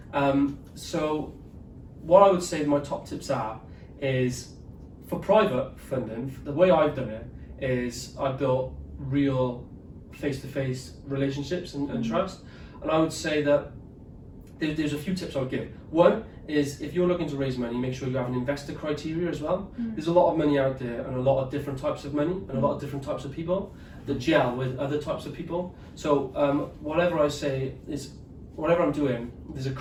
So what I would say my top tips is for private funding, the way I've done it is I built real face-to-face relationships and trust. And I would say that there's a few tips I would give. One is if you're looking to raise money, make sure you have an investor criteria as well. There's a lot of money out there, and a lot of different types of money, and a lot of different types of people that gel with other types of people. So whatever I say is, whatever I'm doing, there's a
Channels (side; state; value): both; identical; correlation 1.00